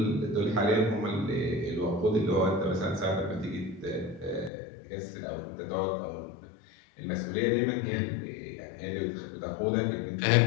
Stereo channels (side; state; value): right; drops out; at 4.5 s